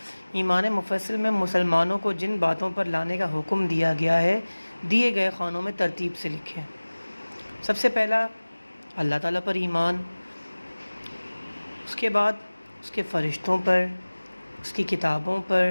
ایمان مفصل میں مسلمانوں کو جن باتوں پر لانے کا حکم دیا گیا ہے دیے گئے خانوں میں ترتیب سے لکھیں۔ سب سے پہلا اللہ تعالیٰ پر ایمان، اس کے بعد اس کے فرشتوں پر، اس کی کتابوں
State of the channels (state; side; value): inverted; both; correlation -1.00